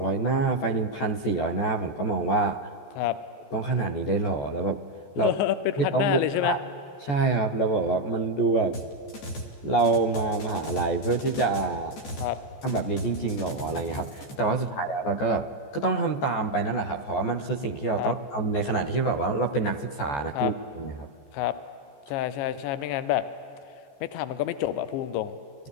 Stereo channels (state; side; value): late; right; 14 ms